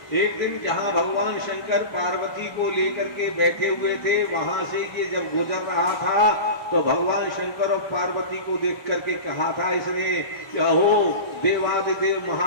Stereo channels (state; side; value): late; right; 1.2 ms